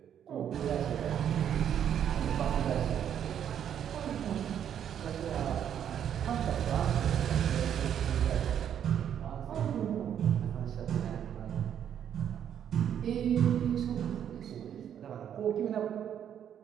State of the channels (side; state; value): left; quieter; 9.3 dB